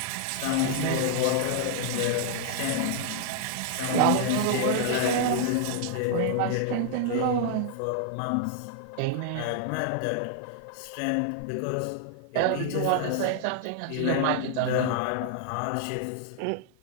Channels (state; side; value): different; both; correlation 0.00